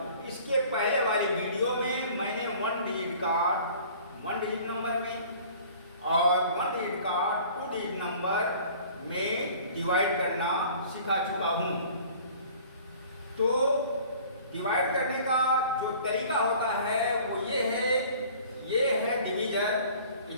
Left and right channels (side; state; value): both; inverted; correlation -0.49